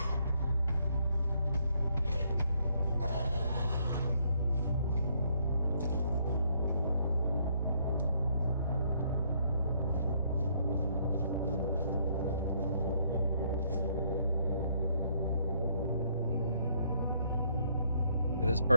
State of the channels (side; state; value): both; inverted; correlation -0.69